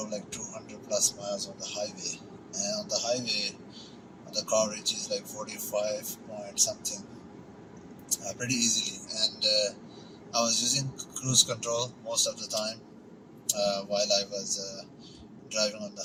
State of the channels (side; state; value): both; identical; correlation 1.00